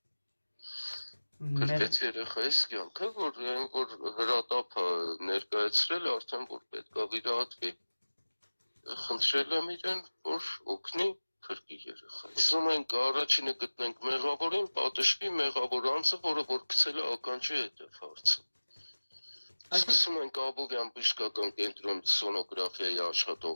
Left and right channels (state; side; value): inverted; both; correlation -1.00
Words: Փրկեց երեխայիս կյանքը, որ հրատապը ներկայացրել արդեն, որ պետք է վիրահատվի, խնդրել եմ իրեն, որ օգնի փրկի երեխային։ Ուզում ենք առաջինը գտնենք մեղավորին, պատժվի մեղավոր անձը, որը որ գցել է ականջի հետև հարցը։ Սկսում ենք Աբովյան բժշկական կենտրոն սոնոգրաֆիայի